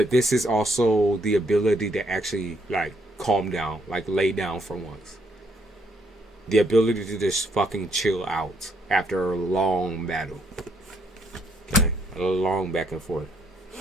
this is also the ability to actually like calm down, like lay down for once. The ability to just fucking chill out after a long battle. Okay, a long back and forth.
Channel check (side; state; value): both; normal; correlation 0.71